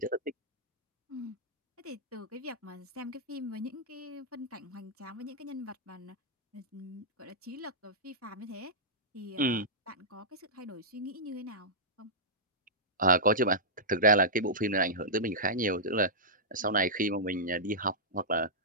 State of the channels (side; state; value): both; normal; correlation -0.13